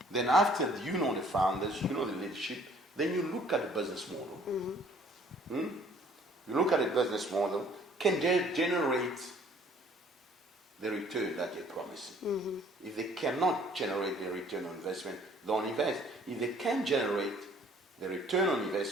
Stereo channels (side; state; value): both; normal; correlation 0.57